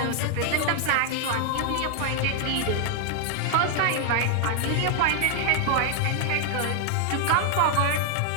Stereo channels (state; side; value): different; both; correlation 0.00